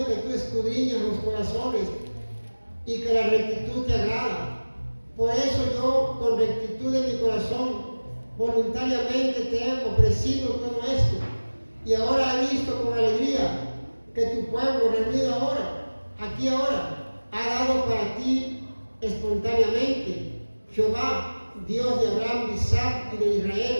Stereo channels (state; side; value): inverted; both; correlation -1.00